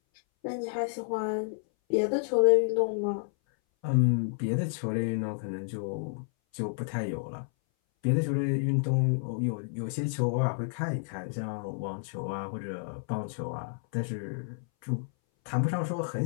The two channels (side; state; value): right; silent; 58 dB below the other